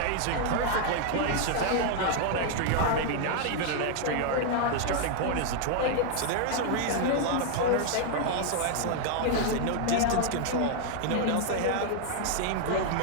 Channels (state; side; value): different; both; correlation 0.00